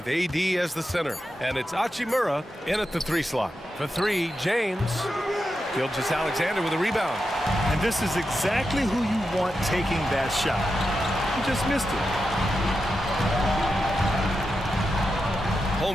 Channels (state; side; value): normal; both; correlation 0.88